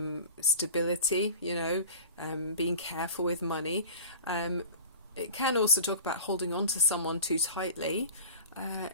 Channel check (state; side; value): inverted; both; correlation -0.38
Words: stability, being careful with money. It can also talk about holding on to someone too tightly.